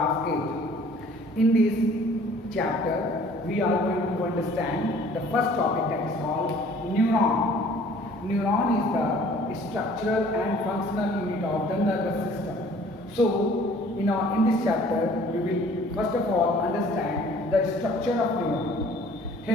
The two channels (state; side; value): normal; both; correlation 0.53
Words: 8. In this chapter we are going to understand the first topic, that is called neuron. Neuron is the structural and functional unit of the nervous system. So in this chapter we will first of all understand the structure of neuron.